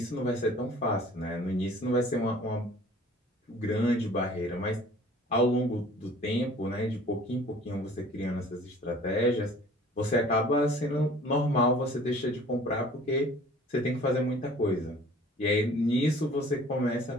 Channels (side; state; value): both; normal; correlation 0.50